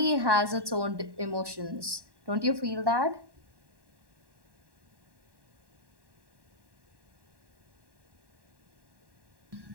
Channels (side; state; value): left; late; 1.1 ms